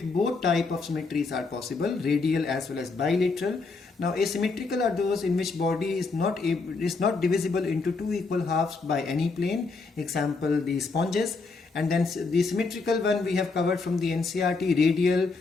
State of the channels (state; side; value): quieter; right; 4.1 dB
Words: both type of symmetries are possible, radial as well as bilateral. Now asymmetrical are those in which body is not divisible into two equal halves by any plane, example the sponges. And then the symmetrical one we have covered from the NCERT, radial